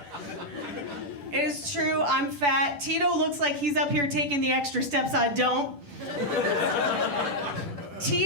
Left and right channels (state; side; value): late; left; 10 ms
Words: It is true, I'm fat. Tito looks like he's up here taking the extra steps I don't.